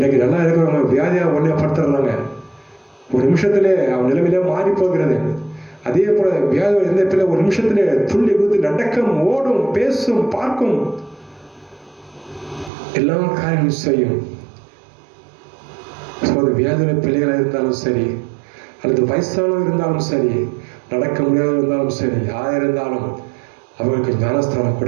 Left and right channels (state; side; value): drops out; left; at 12.7 s